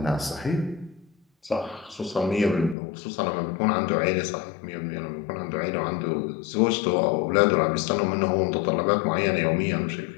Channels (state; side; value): drops out; right; at 2.8 s